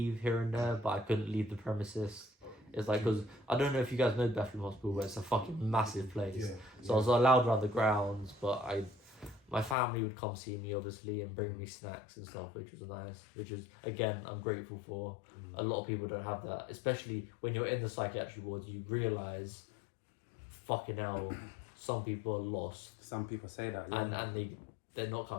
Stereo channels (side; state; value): right; drops out; at 9.8 s